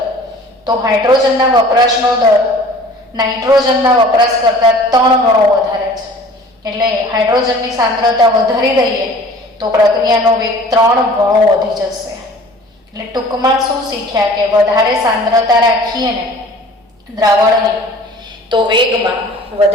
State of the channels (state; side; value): normal; both; correlation 0.47